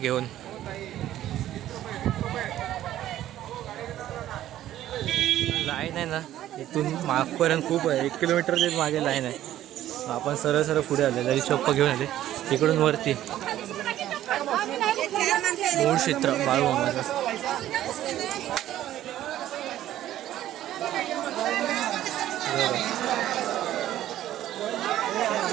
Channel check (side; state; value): left; quieter; 12.9 dB